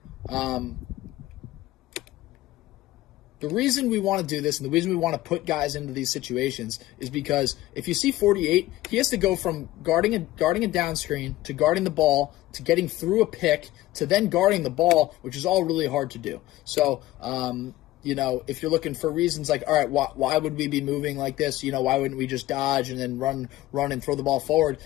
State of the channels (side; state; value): right; quieter; 16.4 dB